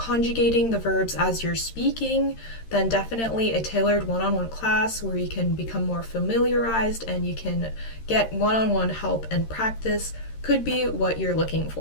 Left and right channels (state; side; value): late; right; 13 ms